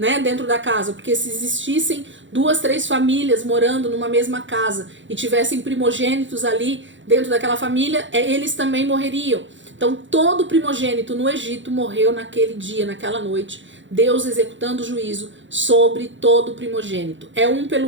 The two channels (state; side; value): late; left; 0.55 ms